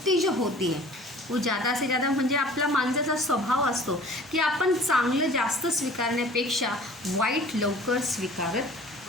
जो होती है वो ज़्यादा से ज़्यादा म्हणजे आपला माणसाचा स्वभाव असतो की आपण चांगलं जास्त स्वीकारण्यापेक्षा वाईट लवकर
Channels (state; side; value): normal; both; correlation 0.47